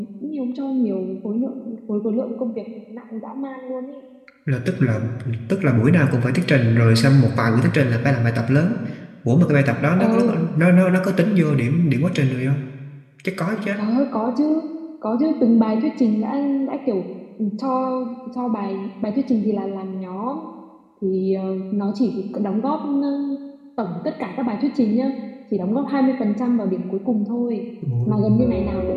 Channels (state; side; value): identical; both; correlation 1.00